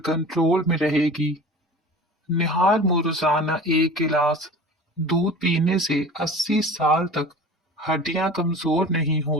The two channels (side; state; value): both; normal; correlation 0.39